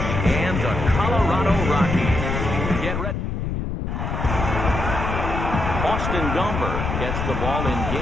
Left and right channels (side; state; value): left; noise; rumble, 3 dB below the sound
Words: and the Colorado Rockies. Get ready. Austin Gomber gets the ball in